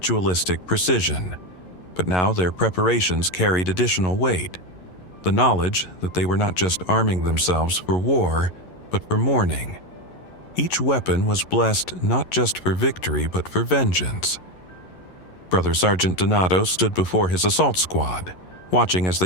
precision, but now their preparations carried additional weight, the knowledge that they were not just arming themselves for war, but for mourning. Each weapon was blessed not just for victory, but for vengeance. Brother Sergeant Donato stood before his assault squad, watching as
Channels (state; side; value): late; right; 11 ms